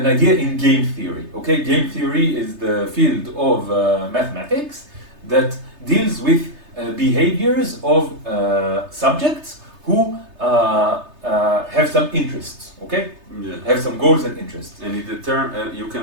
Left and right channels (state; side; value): late; left; 3.3 ms